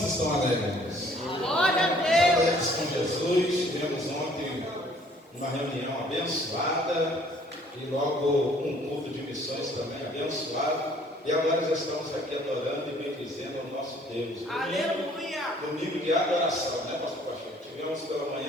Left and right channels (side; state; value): both; normal; correlation 0.58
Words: estão alegres? Glória a Deus! Alegres com Jesus. Tivemos ontem uma reunião abençoada e logo um culto de missões também abençoado. E agora já estamos aqui adorando e bendizendo ao nosso Deus. Aleluia! Domingo de adoração, né, pastor Pacheco? Tivemos pela